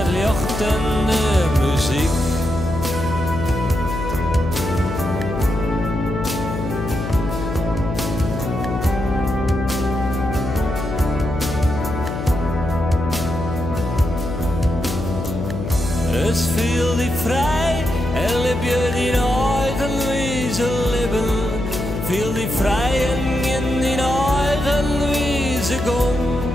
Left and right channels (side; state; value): left; noise; hum, 5 dB below the sound